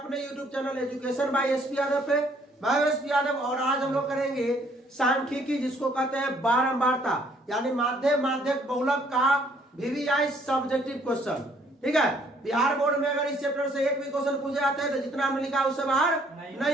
YouTube channel education by SP Yadav पे। मैं एसपी यादव और आज हम लोग करेंगे सांख्यिकी, जिसको कहते हैं बारंबारता, यानी माध्यम माध्यक बहुलक का VVI सब्जेक्टिव क्वेश्चन। ठीक है, बिहार बोर्ड में अगर इस चैप्टर से एक भी क्वेश्चन पूछे जाते हैं तो जितना हमने लिखा उससे बाहर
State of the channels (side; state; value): both; normal; correlation 0.64